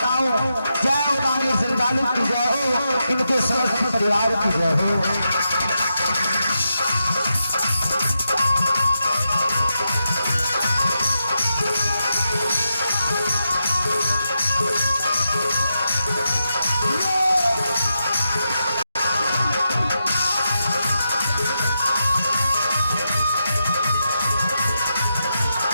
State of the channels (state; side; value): inverted; both; correlation -0.86